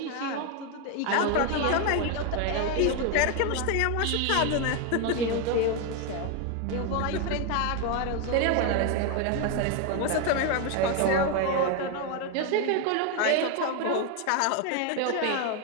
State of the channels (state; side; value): different; both; correlation 0.01